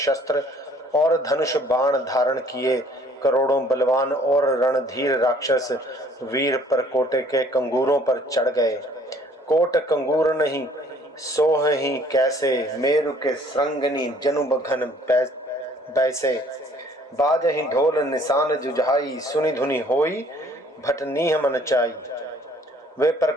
और धनुष बाण धारण किए करोड़ों बलवान और रणधीर राक्षस वीर परकोटे के कंगूरों पर चढ़ गए। कोट कंगूर नहीं सोह ही कैसे, मेरु के श्रृंगनी जनुब घन बैसे। बाजहि ढोल निशान जुझाई, सुनि धुनि होई भटनीह मन चाई। वे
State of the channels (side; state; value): both; normal; correlation 0.58